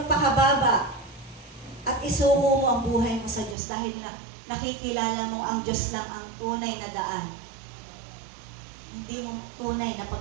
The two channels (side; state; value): left; drops out; at 3.6 s